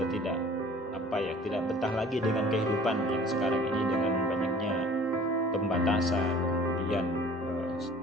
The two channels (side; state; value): both; normal; correlation 0.49